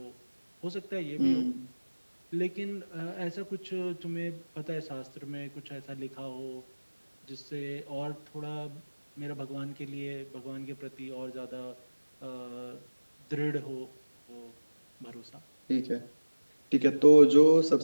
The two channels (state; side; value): inverted; both; correlation -1.00